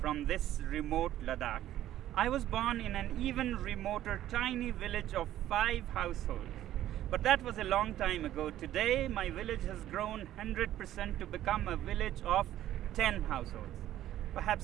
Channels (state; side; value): quieter; left; 12.9 dB